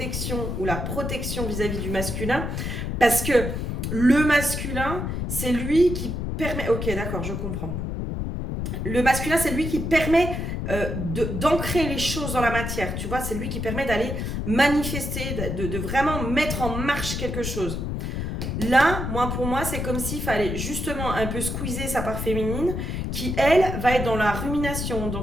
ou la protection vis-à-vis du masculin. Parce que le masculin, c'est lui qui permet... Ok, d'accord, je comprends. Le masculin, c'est lui qui permet d'ancrer les choses dans la matière. Tu vois, c'est lui qui permet d'aller manifester, de vraiment mettre en marche quelque chose. Là, pour moi, c'est comme s'il fallait justement un peu squeezer sa part féminine qui, elle, va être dans la rumination, dans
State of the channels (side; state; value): left; noise; rumble, 3 dB below the sound